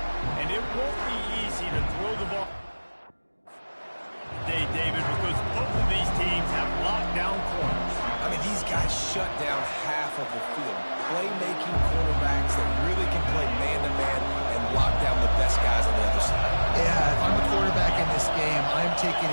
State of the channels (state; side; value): inverted; both; correlation -1.00